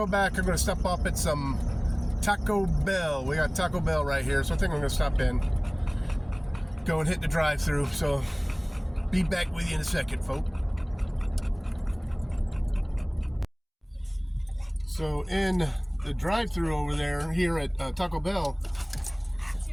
back, I'm going to stop up at some Taco Bell. We got Taco Bell right here, so I think I'm going to stop in, go and hit the drive-thru. So be back with you in a second, folks. So in the drive-thru over there, here at Taco Bell.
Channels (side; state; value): both; identical; correlation 1.00